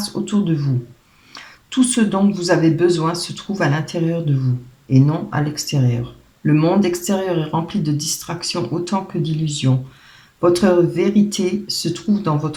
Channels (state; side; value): identical; both; correlation 1.00